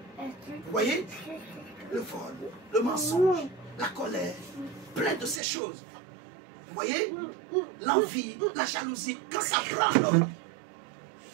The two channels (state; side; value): drops out; left; at 5.4 s